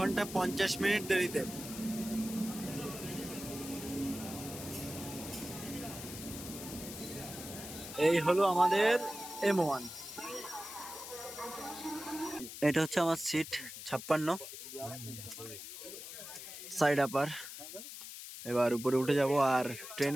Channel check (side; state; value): left; noise; hiss, 10 dB below the sound